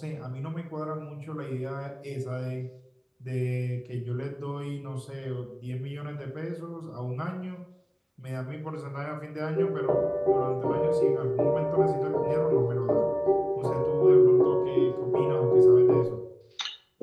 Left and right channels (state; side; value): identical; both; correlation 1.00